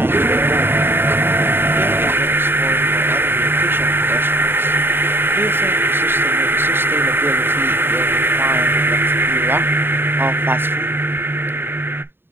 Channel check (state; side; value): late; left; 0.10 ms